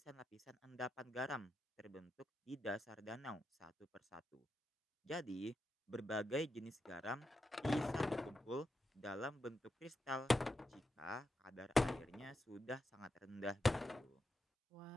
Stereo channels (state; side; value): normal; both; correlation 0.86